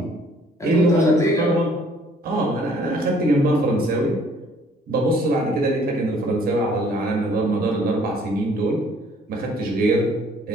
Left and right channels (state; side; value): normal; both; correlation 0.60